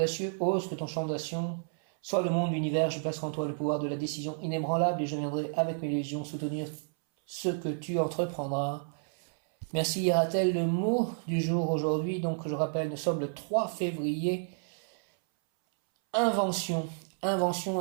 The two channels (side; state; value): left; silent; 57 dB below the other